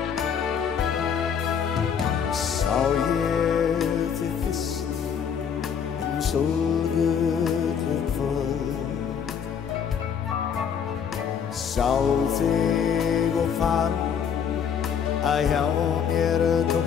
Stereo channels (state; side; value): quieter; right; 7.4 dB